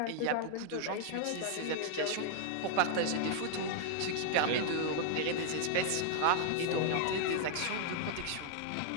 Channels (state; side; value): different; both; correlation 0.00